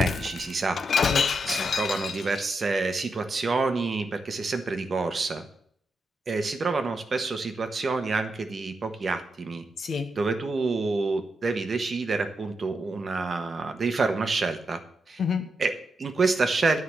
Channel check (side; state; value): both; normal; correlation 0.84